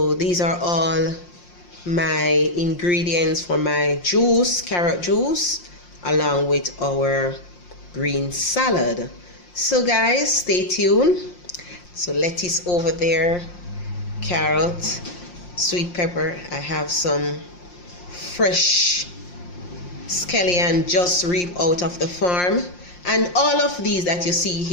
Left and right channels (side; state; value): right; late; 5.7 ms